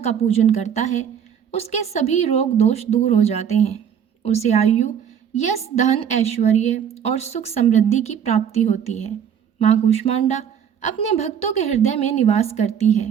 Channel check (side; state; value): left; quieter; 8.3 dB